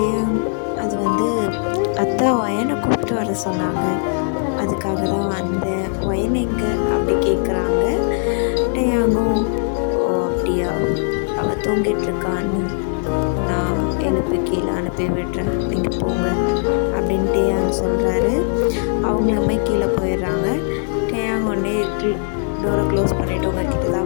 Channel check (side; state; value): right; silent; 59 dB below the other